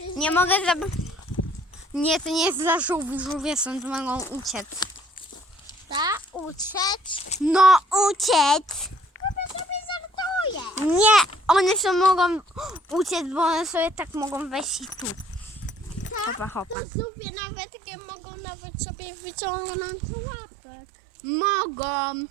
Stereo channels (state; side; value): drops out; left; at 16.8 s